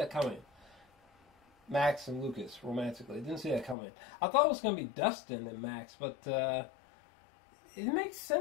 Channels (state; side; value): drops out; right; at 3.8 s